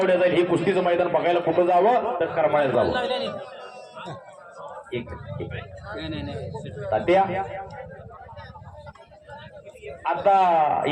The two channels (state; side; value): identical; both; correlation 1.00